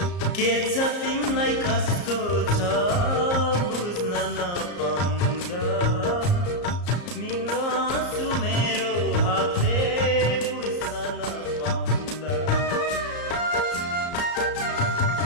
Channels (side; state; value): right; late; 34 ms